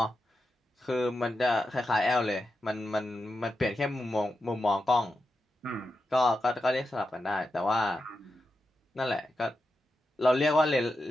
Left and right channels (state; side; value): normal; both; correlation 0.88